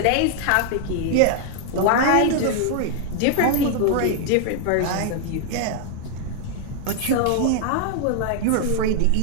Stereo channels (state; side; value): different; both; correlation 0.00